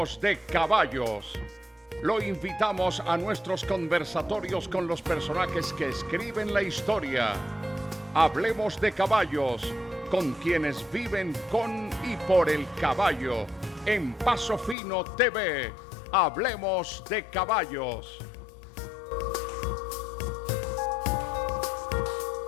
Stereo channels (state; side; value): drops out; right; at 14.8 s